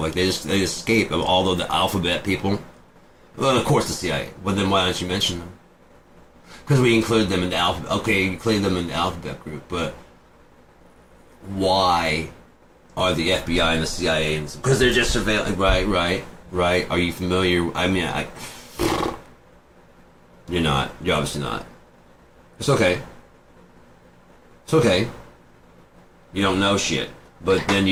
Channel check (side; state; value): both; identical; correlation 1.00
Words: they escape of all of the alphabet people. Well, of course the CIA. Well, then why don't you mention them? Because we include them in the alphabet. Okay, you include them in the alphabet group, but why are the FBI and the CIA? Because they're just surveilling. Right. Are you familiar? I mean, you're not. You're obviously not. It's okay. It's okay. You don't know shit. But then